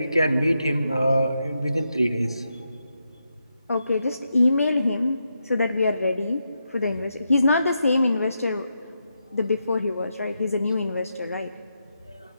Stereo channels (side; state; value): both; inverted; correlation -0.84